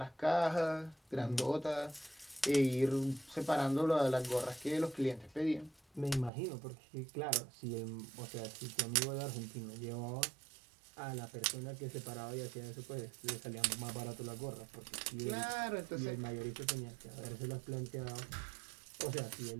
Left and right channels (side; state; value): left; drops out; at 6.3 s